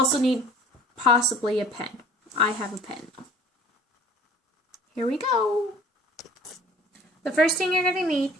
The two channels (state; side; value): normal; both; correlation 0.49